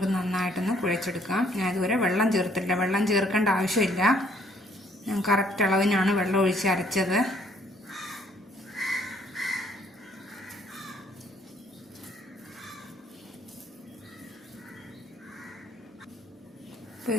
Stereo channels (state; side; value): normal; both; correlation 0.65